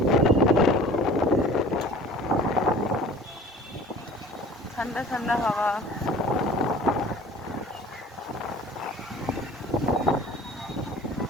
ঠান্ডা ঠান্ডা হাওয়া।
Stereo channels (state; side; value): normal; both; correlation 0.45